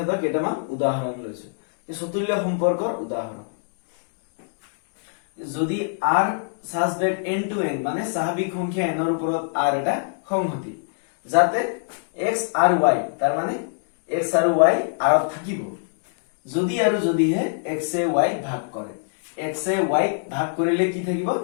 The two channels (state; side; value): silent; right; digital silence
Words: কেইটামান উদাহৰণ লৈছো চতুল্য সম্পৰ্কৰ উদাহৰণ যদি r such that n to n মানে স্বাভাৱিক সংখ্যা n ৰ ওপৰত r এটা সংহতি যাতে x আৰু y তাৰ মানে x আৰু y r ত থাকিব যদি আৰু যদিহে x এ y ভাগ কৰে x এ y ভাগ কৰিলে কি থাকিব